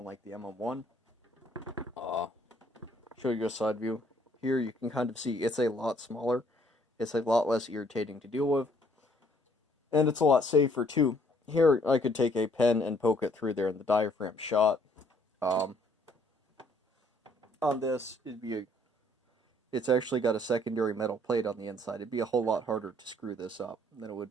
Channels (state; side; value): normal; both; correlation 0.63